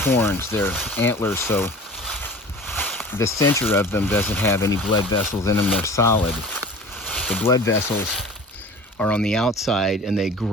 they're antlers, so the center of them doesn't have any blood vessels in them, they're solid. The blood vessels are on the outside and they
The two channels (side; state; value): both; normal; correlation 0.40